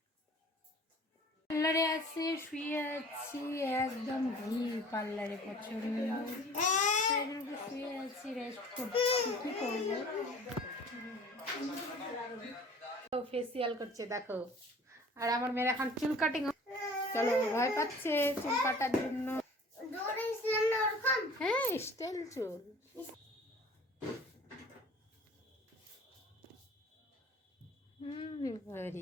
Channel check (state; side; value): normal; both; correlation 0.47